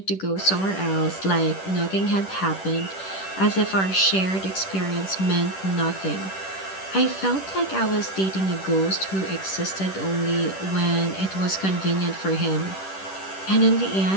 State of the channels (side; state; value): right; late; 10 ms